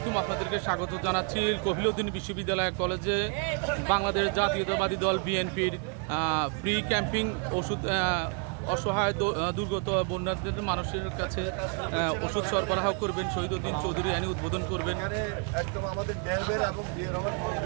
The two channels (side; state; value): left; quieter; 37.2 dB